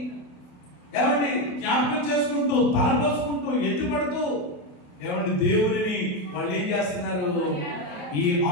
ఏమండి జ్ఞాపకం చేసుకుంటూ తలపోసుకుంటూ ఎత్తుపడుతూ ఏమండి దేవుడిని వాళ్ళు ఏం చేస్తున్నారు? ఈ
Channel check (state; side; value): late; right; 28 ms